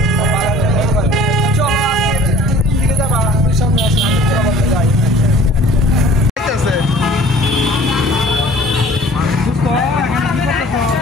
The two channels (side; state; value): both; normal; correlation 0.49